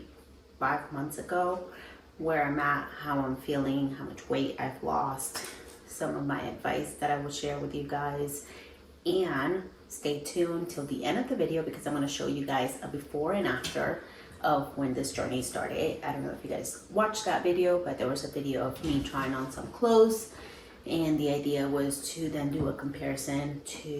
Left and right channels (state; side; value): identical; both; correlation 1.00